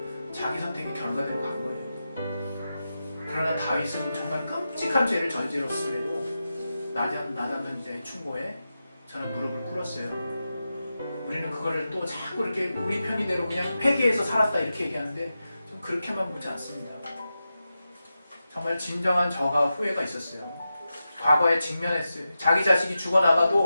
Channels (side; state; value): both; inverted; correlation -0.91